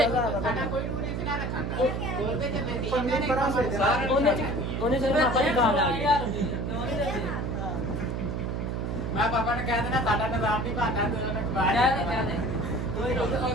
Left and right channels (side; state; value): right; noise; hum, 2 dB below the sound